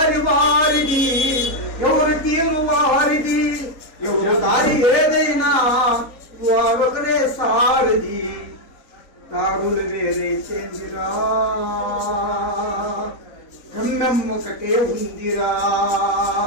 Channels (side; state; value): right; late; 3.9 ms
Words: వారిది ఎవరు తీరు వారిది ఎవరు దారి ఏదైనా ఒకరే సారది దారులు వేరే చెందిరా గమ్యం ఒకటే ఉందిరా